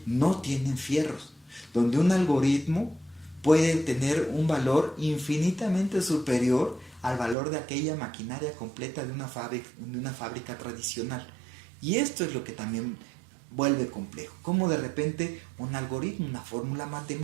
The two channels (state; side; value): drops out; left; at 7.4 s